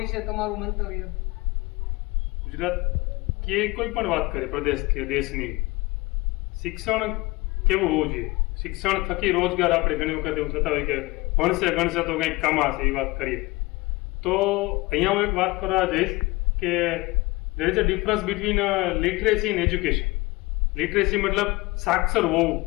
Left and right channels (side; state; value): right; quieter; 22.6 dB